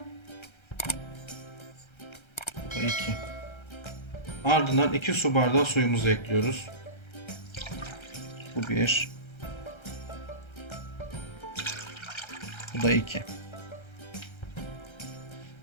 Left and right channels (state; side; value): late; right; 1.3 ms